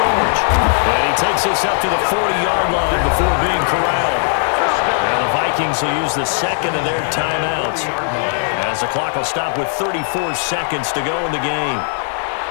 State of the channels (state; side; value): silent; right; digital silence